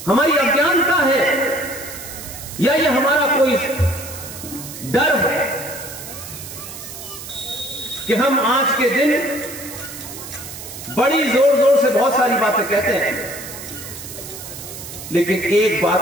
हमारी अज्ञानता है, या ये हमारा कोई डर है कि हम आज के दिन बड़ी जोर जोर से बहुत सारी बातें कहते हैं, लेकिन एक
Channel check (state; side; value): noise; right; hiss, 12 dB below the sound